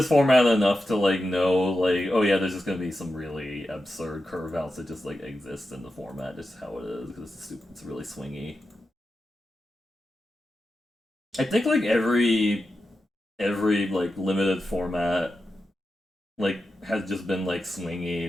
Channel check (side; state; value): both; normal; correlation 0.90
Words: format enough to like know like oh yeah, there's just gonna be some really absurd curve outs that just like exist in the format, just how it is because it's really swingy. I think like every like limited format like has just been like swingy